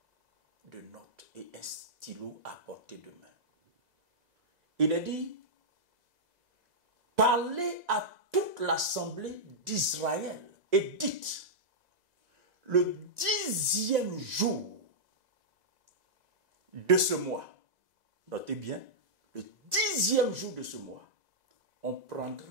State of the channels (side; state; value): left; late; 2.0 ms